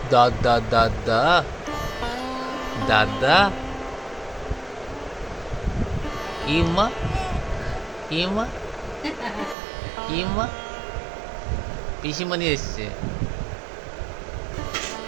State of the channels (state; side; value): drops out; left; at 9.6 s